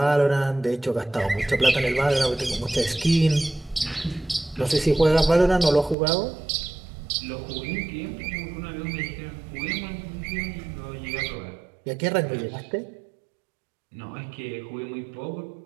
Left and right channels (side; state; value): left; drops out; at 6.0 s